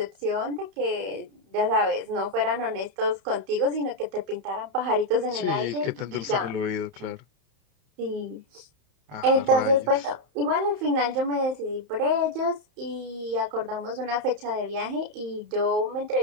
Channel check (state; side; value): late; left; 31 ms